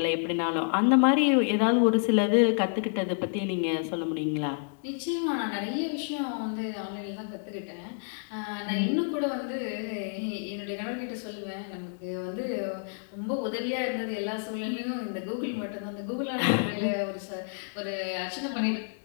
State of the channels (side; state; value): right; silent; digital silence